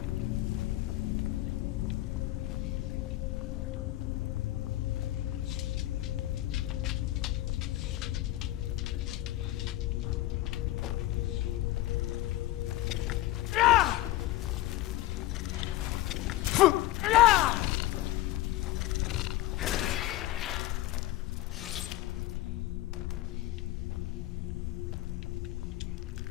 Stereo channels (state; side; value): quieter; right; 16.3 dB